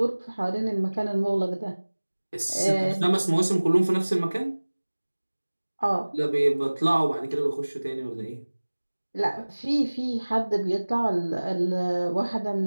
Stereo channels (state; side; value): inverted; both; correlation -1.00